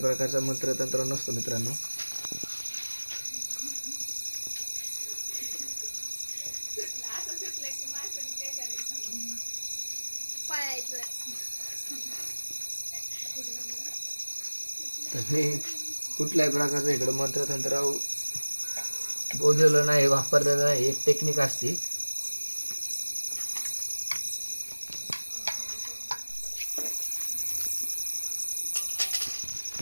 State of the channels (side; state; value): both; inverted; correlation -1.00